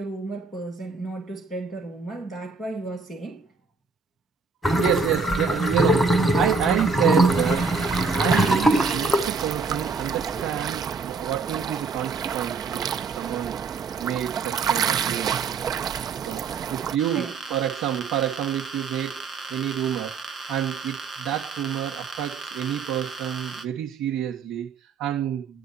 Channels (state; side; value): quieter; left; 4.6 dB